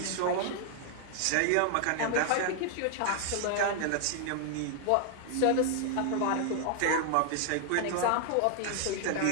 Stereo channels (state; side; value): different; both; correlation 0.00